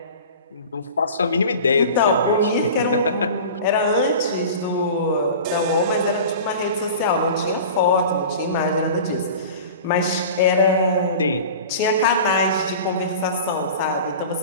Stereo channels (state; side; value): inverted; both; correlation -0.37